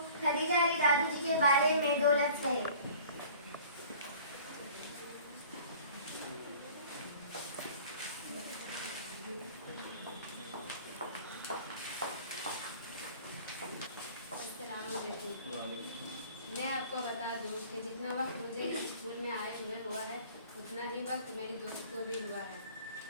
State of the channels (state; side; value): inverted; both; correlation -0.47